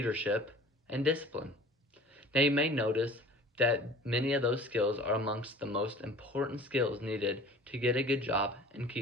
and discipline. Now you may notice that many of those skills are amongst the most important skills needed to get a good job and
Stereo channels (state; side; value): normal; both; correlation 0.45